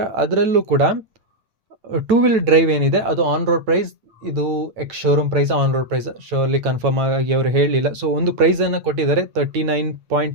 ಅದರಲ್ಲೂ ಕೂಡ 2 ವೀಲ್ ಡ್ರೈವ್ ಏನಿದೆ ಅದು ಆನ್ ರೋಡ್ ಪ್ರೈಸ್, ಇದು showroom price, on road price surely confirm ಆಗಿ ಅವರು ಹೇಳಲಿಲ್ಲ. ಒಂದು ಪ್ರೈಸನ್ನು ಕೊಟ್ಟಿದ್ದಾರೆ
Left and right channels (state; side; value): late; left; 9.0 ms